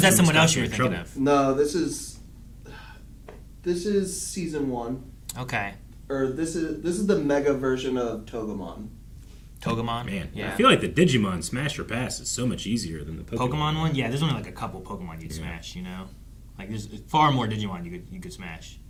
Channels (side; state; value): both; identical; correlation 1.00